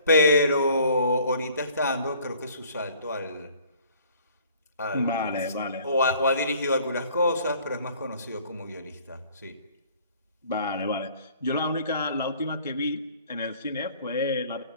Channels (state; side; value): inverted; both; correlation -0.55